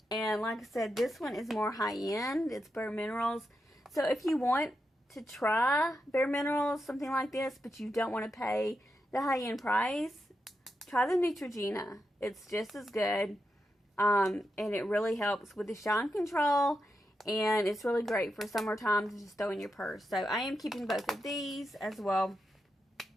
And like I said, this one is more high-end. It's Bare Minerals. So if you want to try Bare Minerals, something like this, but you don't want to pay the high-end price, try the Neutrogena. It's just as good. And it really helps with the shine control. And it's really great for summertime to just throw in your purse. So I am keeping both of these as well.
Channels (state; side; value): normal; both; correlation 0.86